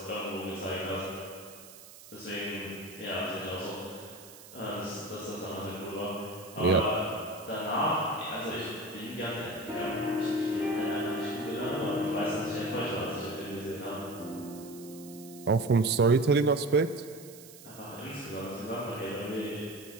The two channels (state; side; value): noise; right; hiss, 18 dB below the sound